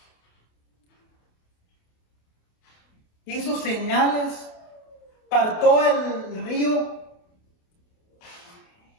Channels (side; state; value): right; late; 28 ms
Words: hizo señales, partó el río